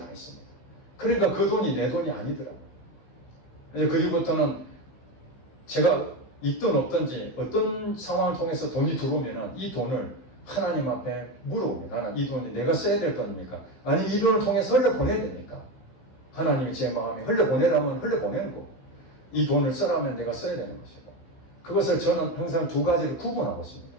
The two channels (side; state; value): right; late; 15 ms